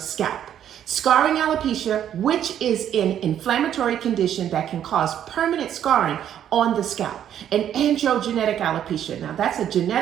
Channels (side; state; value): left; quieter; 10.1 dB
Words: Scarring alopecia, which is an inflammatory condition that can cause permanent scarring on the scalp. And androgenetic alopecia, now that's a